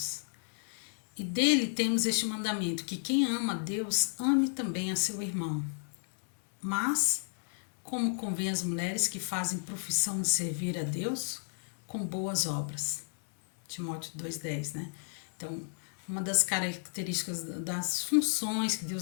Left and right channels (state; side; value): silent; right; digital silence